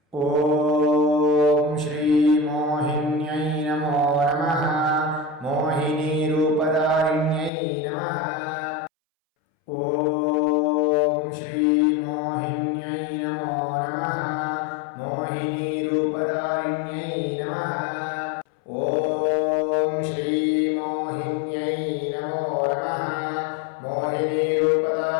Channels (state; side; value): drops out; right; at 7.5 s